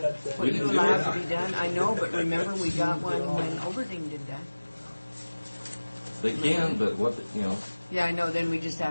what you allowed to be done. I know, but remember, we got one when Overding did that. They can, but what, Yeah, I know, then we just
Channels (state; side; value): inverted; both; correlation -1.00